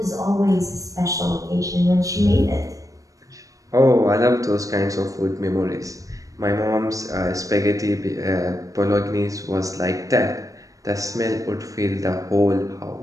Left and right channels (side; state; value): left; late; 0.16 ms